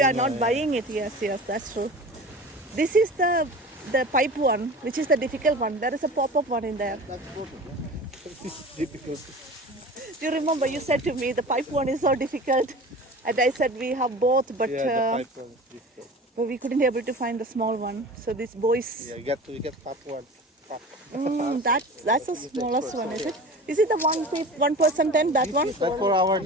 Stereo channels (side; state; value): both; normal; correlation 0.37